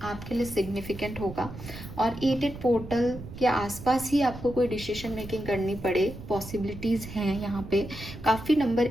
आपके लिए सिग्निफिकेंट होगा, और 8-8 पोर्टल के आसपास ही आपको कोई डिसीजन मेकिंग करनी पड़े, पॉसिबिलिटीज़ हैं यहाँ पे। काफ़ी नंबर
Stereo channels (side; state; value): right; noise; rumble, 12 dB below the sound